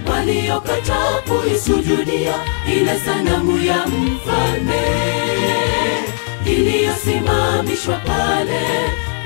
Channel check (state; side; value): silent; right; digital silence